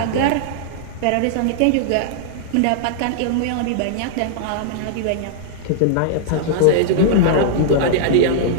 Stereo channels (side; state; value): both; different; correlation -0.01